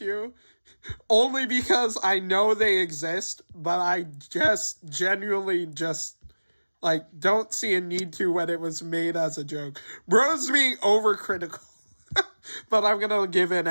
Only because I know they exist, but I just genuinely don't see a need to when it was made as a joke. Bro's being overcritical. But I'm gonna give in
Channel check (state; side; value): inverted; both; correlation -1.00